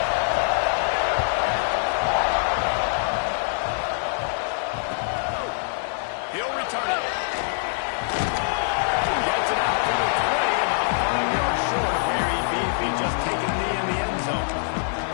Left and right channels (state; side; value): silent; right; 57 dB below the other